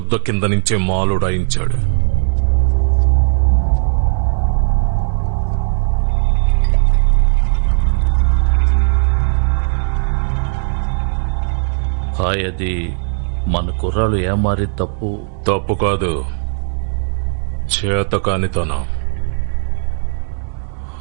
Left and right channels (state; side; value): silent; left; digital silence